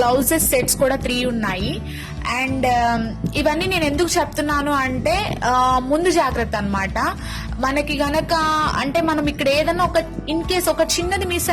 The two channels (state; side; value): identical; both; correlation 1.00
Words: గ్లౌజెస్ సెట్స్ కూడా 3 ఉన్నాయి. అండ్ ఇవన్నీ నేను ఎందుకు చెప్తున్నాను అంటే ముందు జాగ్రత్త అన్నమాట. మనకి గనక అంటే మనం ఇక్కడ ఏదైనా ఒక ఇన్ కేస్ ఒక చిన్నది మిస్